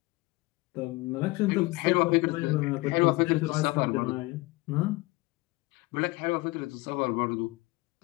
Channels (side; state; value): right; quieter; 22.4 dB